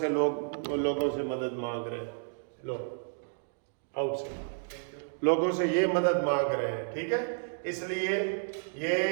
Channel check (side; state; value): left; silent; digital silence